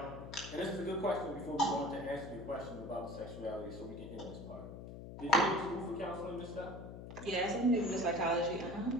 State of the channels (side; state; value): left; noise; hum, 11 dB below the sound